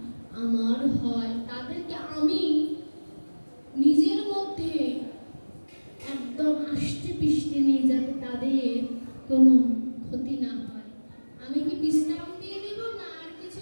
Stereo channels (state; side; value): inverted; both; correlation -1.00